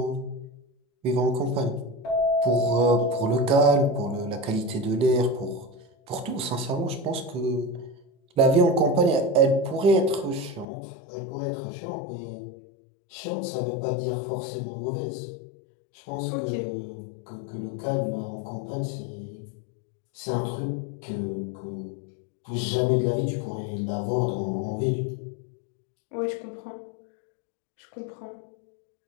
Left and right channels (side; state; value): right; drops out; at 10.7 s